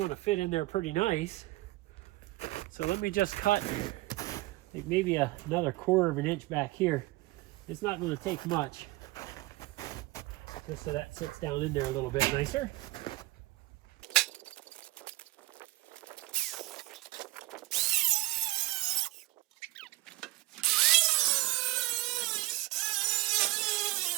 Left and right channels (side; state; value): left; quieter; 20.6 dB